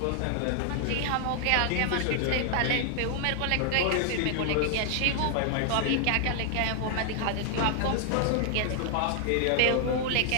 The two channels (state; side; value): different; both; correlation 0.00